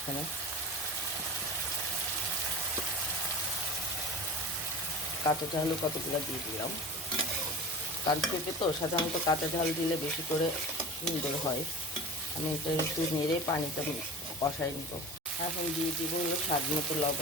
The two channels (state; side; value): normal; both; correlation 0.35